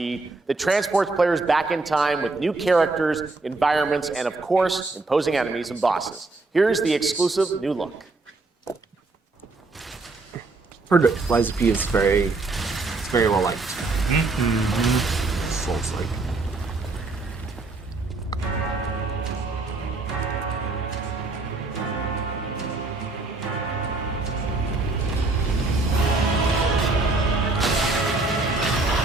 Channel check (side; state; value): left; quieter; 3.4 dB